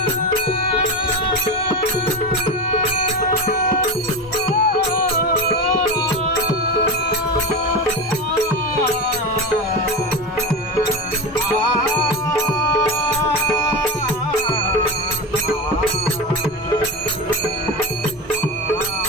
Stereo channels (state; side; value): normal; both; correlation 0.22